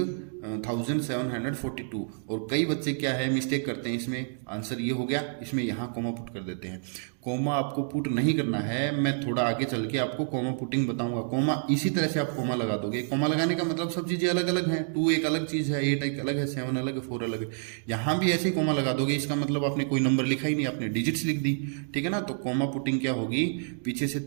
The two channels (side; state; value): left; silent; digital silence